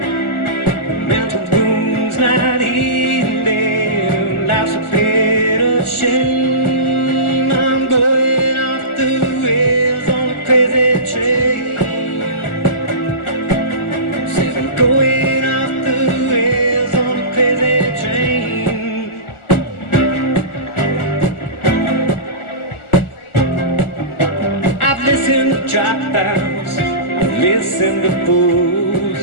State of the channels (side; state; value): right; late; 1.4 ms